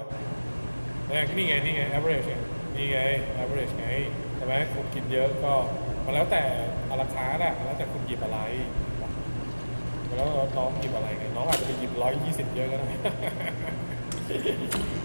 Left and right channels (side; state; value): both; inverted; correlation -1.00